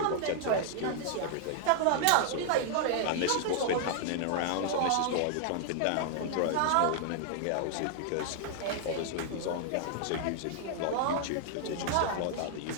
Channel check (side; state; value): both; different; correlation -0.01